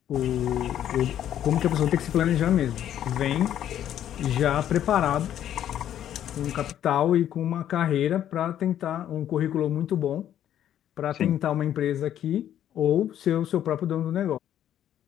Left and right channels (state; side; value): quieter; right; 10.9 dB